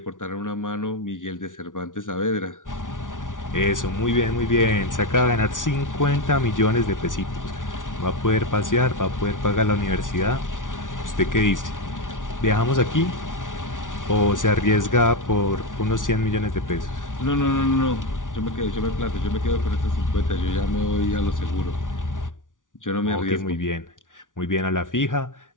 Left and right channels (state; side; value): late; right; 0.88 ms